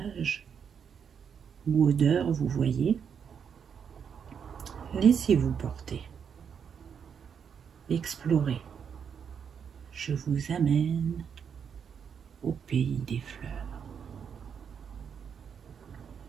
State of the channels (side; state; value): left; quieter; 7.2 dB